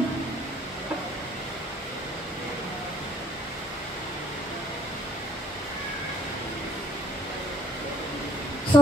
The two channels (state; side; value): normal; both; correlation 0.63